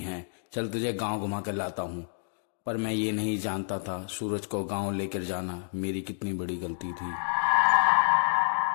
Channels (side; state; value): right; silent; digital silence